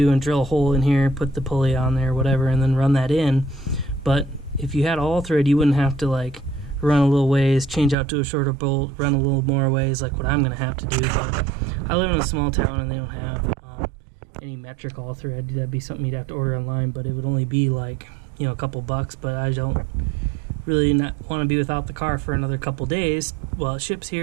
and drill a hole in here, put the pulley on there, whatever, and then run that in. But if you had all thread, you wouldn't have to like run a little ways, change out to a shorter bolt, run a little more ways like what I'm going to have to do. But I live in a small town and they don't have any metric all thread. That'd be something you'd have to order online, but it would only be like, you know, a couple bucks. But I don't really not want to be without the car for another couple days while it ships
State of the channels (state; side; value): drops out; left; at 8.0 s